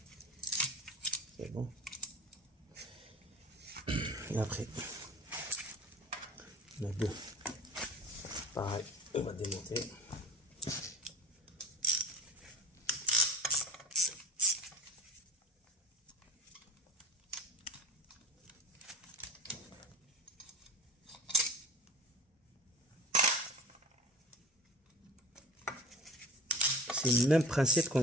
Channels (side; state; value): both; normal; correlation 0.37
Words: c'est bon. Et après, on a deux, pareil, on va démonter. C'est le même principe